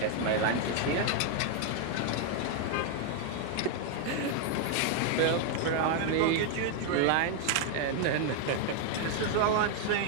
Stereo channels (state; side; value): different; both; correlation 0.00